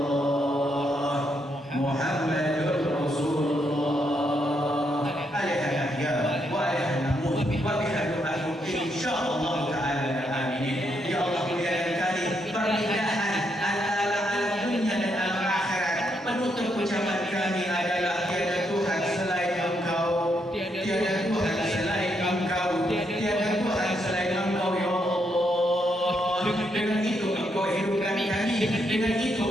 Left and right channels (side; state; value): both; normal; correlation 0.78